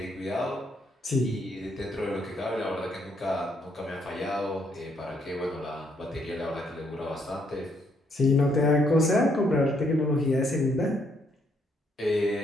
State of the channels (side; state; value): both; normal; correlation 0.72